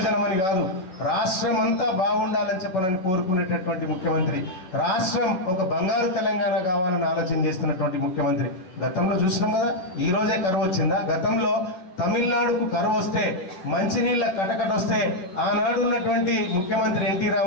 అని కాదు, రాష్ట్రం అంతా బాగుండాలని చెప్పనని కోరుకునేటటువంటి ముఖ్యమంత్రి, రాష్ట్రం ఒక బంగారు తెలంగాణ కావాలని ఆలోచన చేస్తున్నటువంటి ముఖ్యమంత్రి. గతంలో చూసినాం కదా, ఈ రోజే కరువు వచ్చిందా? గతంలో తమిళనాడుకు కరువు వస్తే, మంచినీళ్ళ కటకట వస్తే ఆనాడు ఉన్నటువంటి ముఖ్యమంత్రి ఎన్టీ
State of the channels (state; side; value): late; right; 11 ms